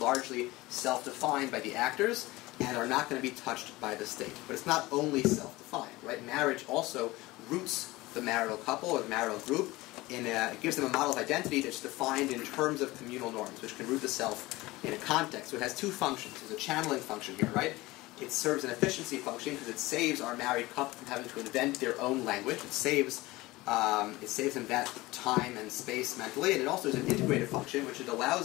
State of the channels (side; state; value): right; quieter; 20.0 dB